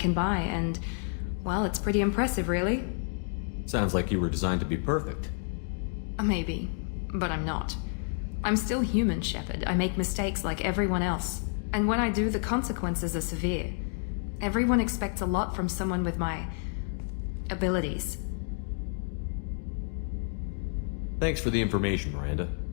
buy, and, well, it's pretty impressive, really. Sounds like you were designed to be perfect. Maybe, but I'm not. I'm still human, Shepard. I make mistakes like everyone else. And when I do, the consequences are severe. Everyone expects a lot from someone with my abilities. Thanks for the information, Miranda.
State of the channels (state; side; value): silent; right; 58 dB below the other